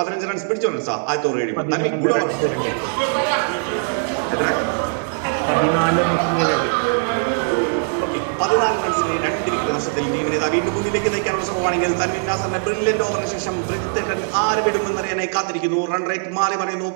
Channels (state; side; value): silent; left; 65 dB below the other